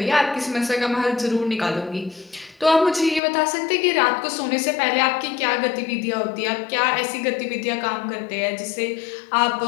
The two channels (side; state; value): right; drops out; at 3.2 s